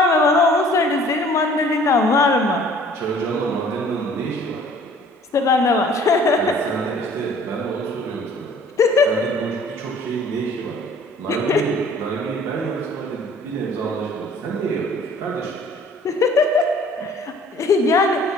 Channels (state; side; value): normal; both; correlation 0.53